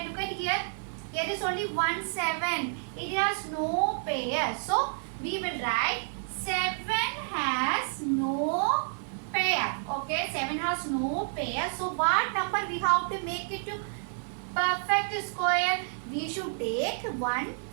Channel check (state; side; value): silent; left; 56 dB below the other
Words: look at here. Here is only 1 7. It has no pair. So we will write 7 has no pair. Okay, 7 has no pair. So what number we have to make it to perfect square? We should take 1